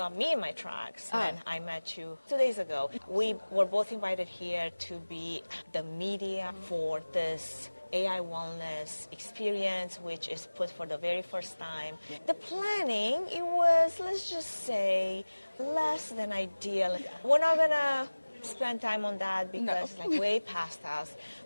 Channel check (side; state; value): both; inverted; correlation -1.00